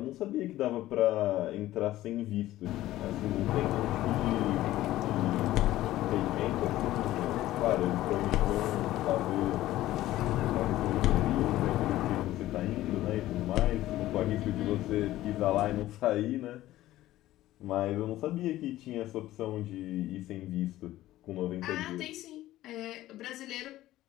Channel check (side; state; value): right; quieter; 15.2 dB